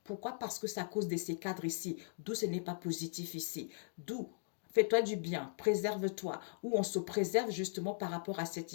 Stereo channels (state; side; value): silent; right; digital silence